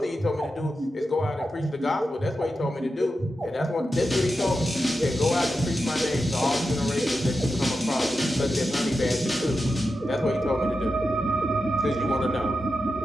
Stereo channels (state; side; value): normal; both; correlation 0.90